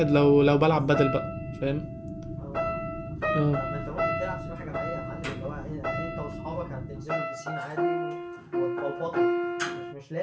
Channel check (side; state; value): both; identical; correlation 1.00